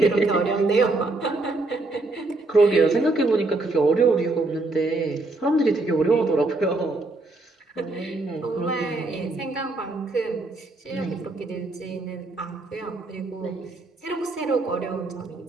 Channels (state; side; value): quieter; left; 3.1 dB